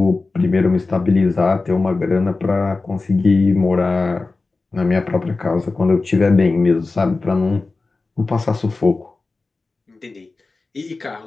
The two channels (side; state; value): right; quieter; 3.7 dB